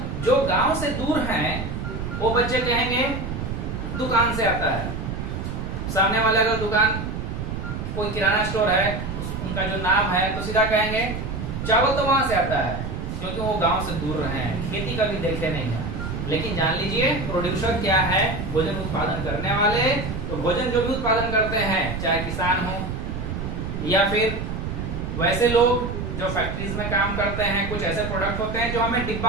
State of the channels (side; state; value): right; noise; rumble, 5 dB below the sound